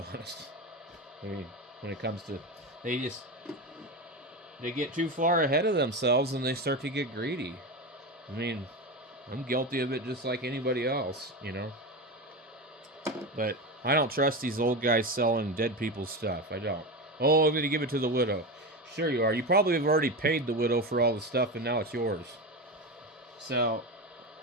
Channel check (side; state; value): both; normal; correlation 0.20